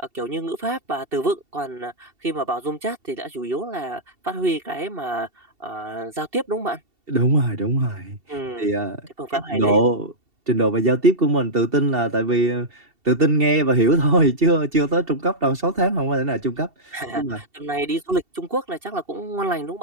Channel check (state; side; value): late; left; 2.7 ms